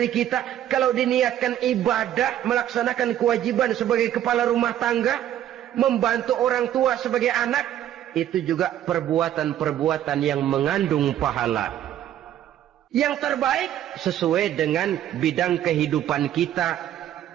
kita. Kalau diniatkan ibadah, melaksanakan kewajiban sebagai kepala rumah tangga, membantu orang tua sebagai anak, itu juga perbuatan-perbuatan yang mengandung pahala. Yang terbaik sesuai dengan bidang kehidupan kita.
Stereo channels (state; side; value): quieter; left; 11.6 dB